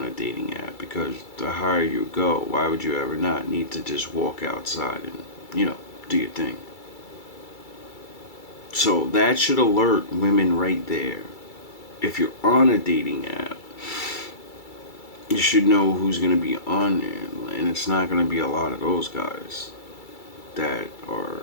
a dating app because the higher you go, why would you ever not need to just walk outside and, do your thing? So that should alert women right there. If you're on a dating app, you should know who's going to be on there, and it's not going to be a lot of those guys that are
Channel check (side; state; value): right; late; 2.3 ms